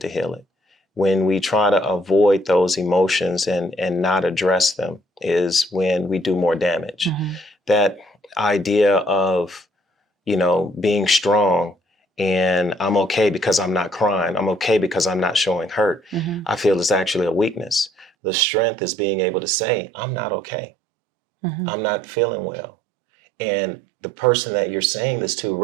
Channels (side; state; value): left; drops out; at 18.1 s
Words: heal it. When we try to avoid those emotions and not address them is when we do more damage. That idea of, being strong and I'm okay because I'm not crying, I'm okay because I'm not showing hurt, I feel is actually a weakness. The strength is being able to say, I'm not okay. I'm not feeling well. And the person that you're saying this to,